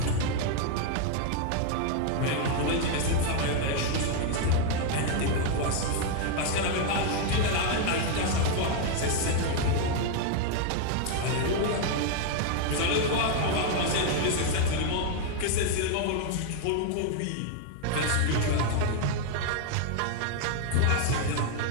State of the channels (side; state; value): both; different; correlation 0.00